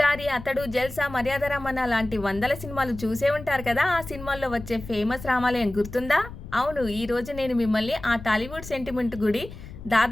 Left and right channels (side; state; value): left; noise; rumble, 13 dB below the sound